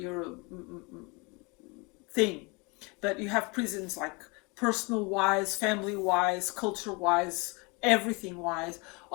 thing, but you have prisons like personal wise, family wise, culture wise, everything wise.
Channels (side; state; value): right; quieter; 28.9 dB